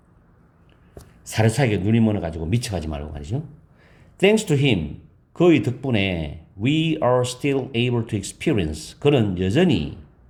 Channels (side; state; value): both; identical; correlation 1.00